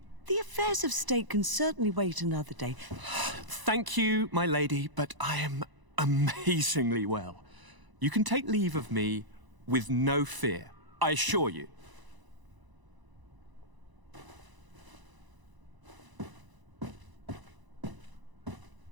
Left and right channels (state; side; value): late; left; 1.0 ms